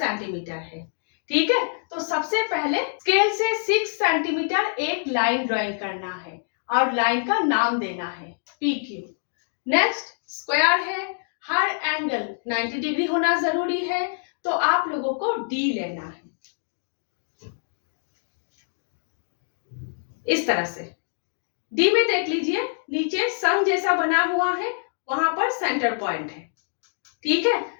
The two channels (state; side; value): silent; right; digital silence